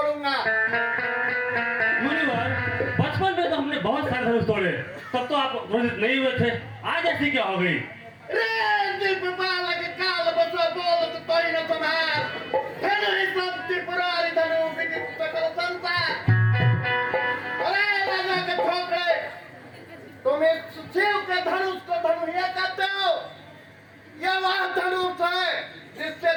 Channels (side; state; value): both; identical; correlation 1.00